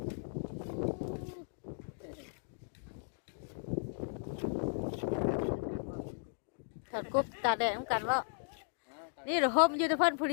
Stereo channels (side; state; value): right; silent; digital silence